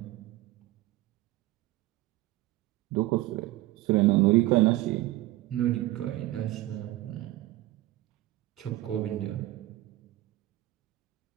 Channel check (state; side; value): quieter; left; 17.2 dB